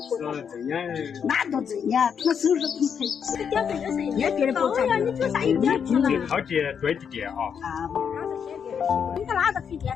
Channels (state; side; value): quieter; right; 7.3 dB